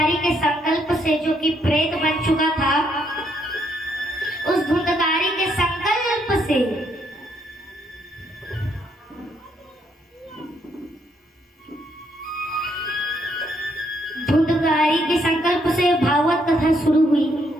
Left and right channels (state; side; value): normal; both; correlation 0.73